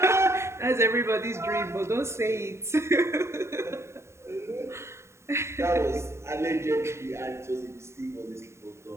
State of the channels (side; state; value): left; late; 0.13 ms